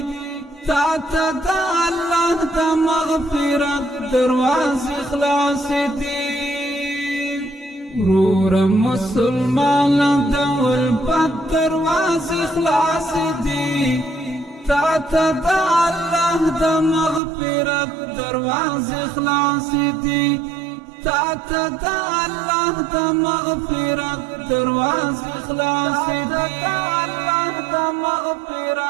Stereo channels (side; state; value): left; drops out; at 17.2 s